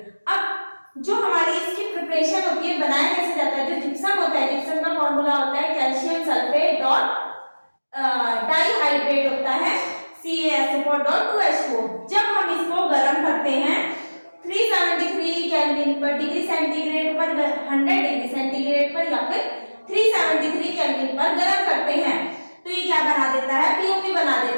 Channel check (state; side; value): inverted; both; correlation -1.00